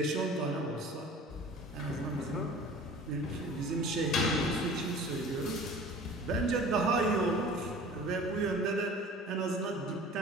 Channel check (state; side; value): normal; both; correlation 0.43